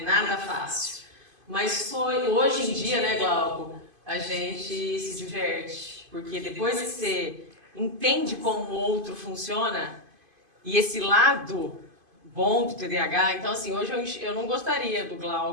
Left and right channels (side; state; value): left; late; 2.5 ms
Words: Nada fácil. Mas hoje em dia, né, Glauco, a gente se diverte. Porque depois que você entende como o outro funciona, e esse lado bom do TDAH, então assim, hoje eu não gostaria do